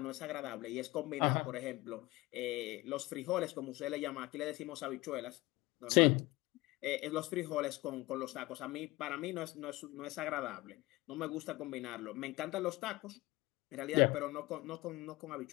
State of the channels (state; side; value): quieter; right; 20.3 dB